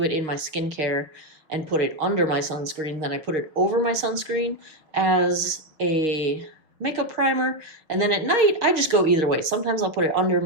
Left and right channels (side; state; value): left; late; 6.4 ms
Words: it in my skincare and put it under my sunscreen, then I put it over my sunscreen as a makeup primer. And then at night, I just go either way. Sometimes I'll put it under